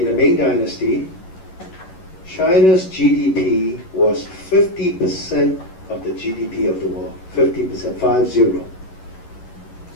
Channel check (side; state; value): right; late; 11 ms